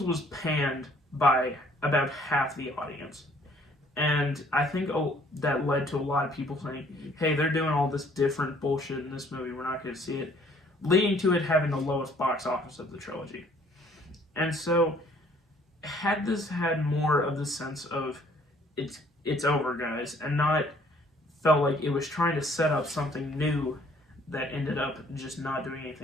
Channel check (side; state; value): both; normal; correlation 0.60